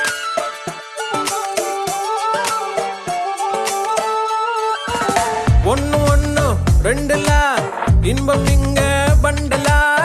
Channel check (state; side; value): identical; both; correlation 1.00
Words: ஒன்னு ஒன்னு ரெண்டுல இன்பம் இங்க பண்டலா,